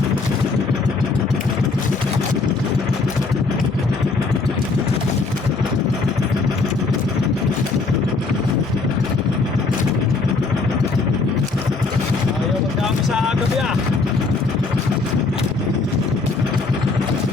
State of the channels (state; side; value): quieter; right; 4.0 dB